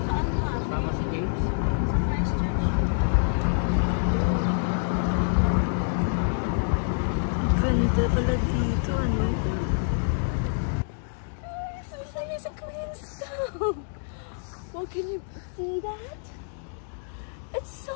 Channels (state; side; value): silent; right; digital silence